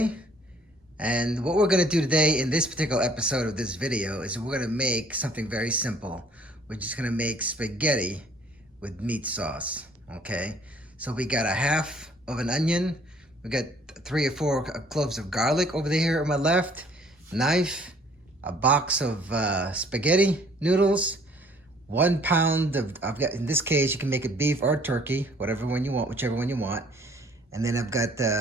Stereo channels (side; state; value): both; normal; correlation 0.58